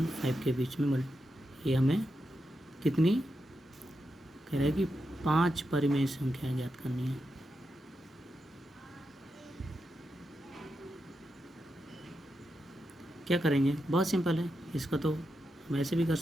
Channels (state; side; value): normal; both; correlation 0.87